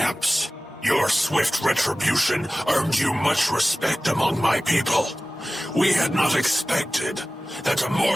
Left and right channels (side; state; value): both; normal; correlation 0.97